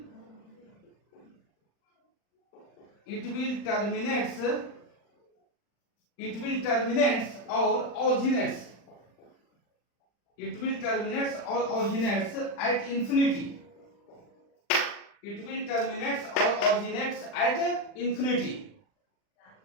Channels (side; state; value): right; late; 40 ms